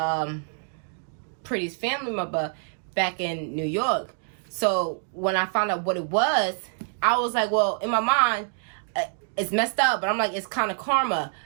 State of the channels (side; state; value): left; silent; 61 dB below the other